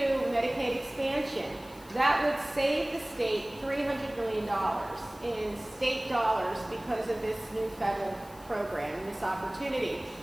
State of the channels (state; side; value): noise; left; hiss, 23 dB below the sound